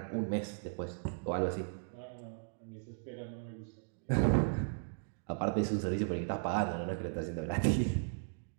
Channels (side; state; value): left; silent; digital silence